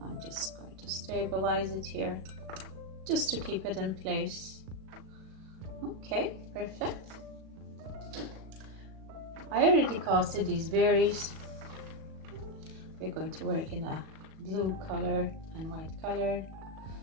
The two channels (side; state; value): left; late; 37 ms